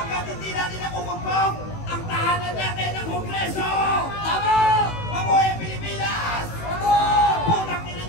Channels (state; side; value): late; right; 18 ms